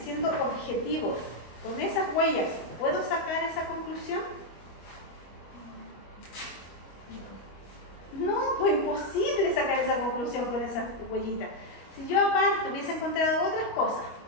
objetivos con esas huellas puedo sacar esa conclusión? No, pues imposible sacar esa conclusión con esas huellitas. Si yo aparte hubiese encontrado otras cosas,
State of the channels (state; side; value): late; right; 25 ms